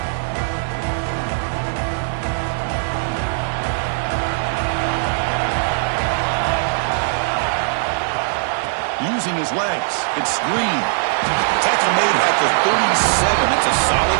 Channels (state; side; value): silent; left; digital silence